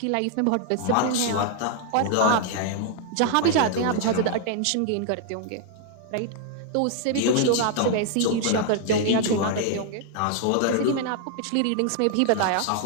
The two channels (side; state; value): both; different; correlation 0.00